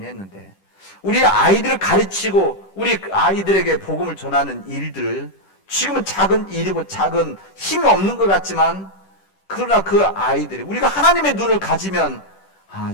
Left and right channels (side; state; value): right; late; 10 ms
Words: 했는데, 우리 아이들을 가르치고 우리 아이들에게 복음을 전하는 일들, 지금은 작은 일이고 작은 힘이 없는 것 같지만, 그러나 그 아이들이, 우리가 하나님의 눈을 가지면